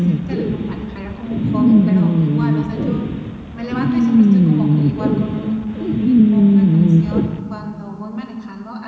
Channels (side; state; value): both; identical; correlation 1.00